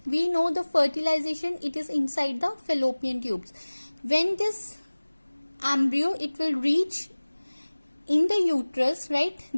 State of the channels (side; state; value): both; inverted; correlation -1.00